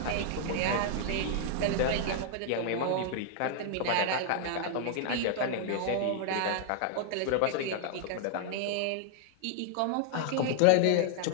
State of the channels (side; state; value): both; different; correlation 0.00